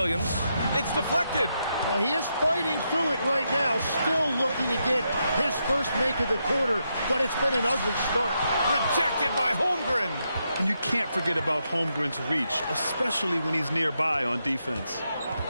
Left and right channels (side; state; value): both; inverted; correlation -0.82